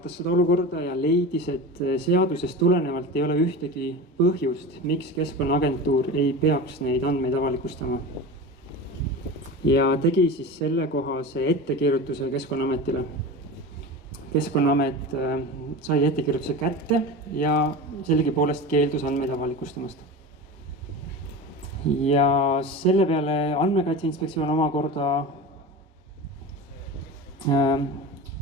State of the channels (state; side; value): normal; both; correlation 0.28